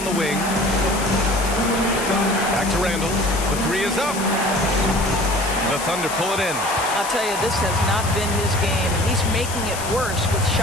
the wing. Back to Randall. The 3 is up. The Thunder pull it in. I'll tell you, this has not been his game, and he's making it worse with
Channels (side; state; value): left; noise; hiss, 9 dB below the sound